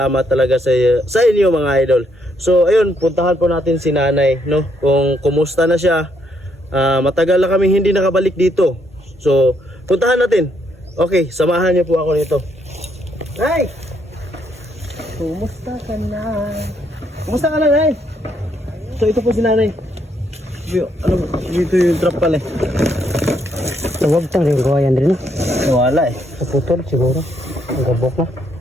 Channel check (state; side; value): normal; both; correlation 0.73